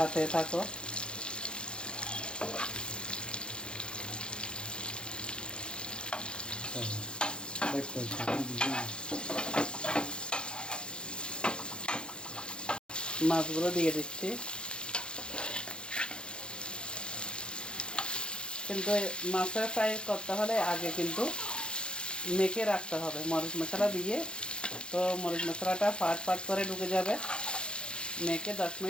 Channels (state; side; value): late; right; 0.052 ms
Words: থাকো। মাছগুলো দিয়ে দিচ্ছি, কিন্তু মাছের ফ্রাই করতে হলে আগে কিন্তু মেখে রাখতে হবে মরিচ মশলা দিয়ে। তো মরিচ মশলাটা ফাট ফাট করে ঢুকে যাবে, মেখে 10